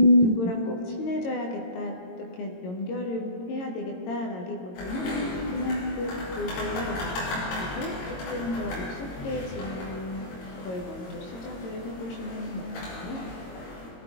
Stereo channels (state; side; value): late; right; 22 ms